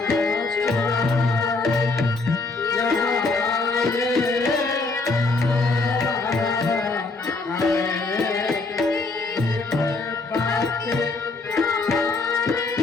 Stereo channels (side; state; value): right; quieter; 3.6 dB